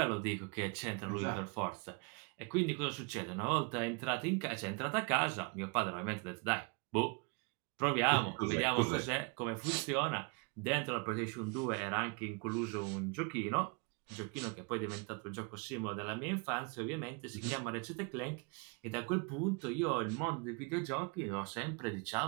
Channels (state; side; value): quieter; left; 31.6 dB